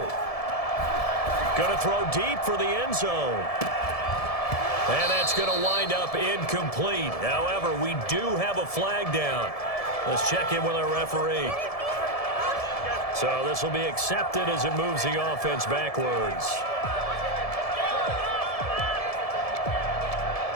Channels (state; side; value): late; right; 1.7 ms